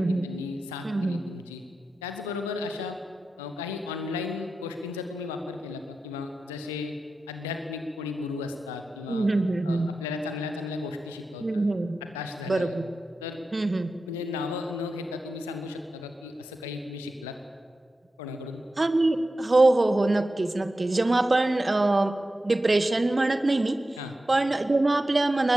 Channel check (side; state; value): both; normal; correlation 0.92